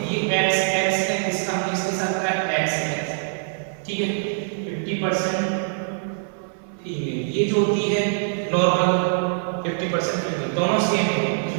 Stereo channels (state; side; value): silent; left; 59 dB below the other